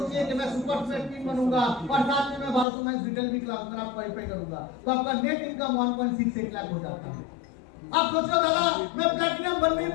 कि मैं सुपर स्पॉट पिन बनूंगा और साथ में मैं 1200 मंथ रिटेल भी क्लास में आप क्वालिफाई करूंगा, तो आपका नेट इनकम 1.68 लाख हो जाता है। आप सोच रहे दादा मैं प्लैटिनम बन नहीं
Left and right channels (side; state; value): right; drops out; at 2.7 s